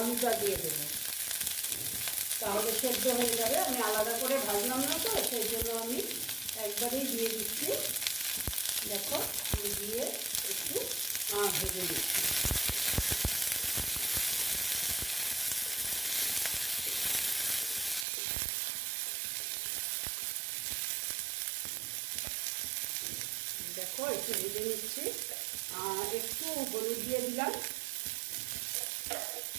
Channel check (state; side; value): drops out; left; at 18.1 s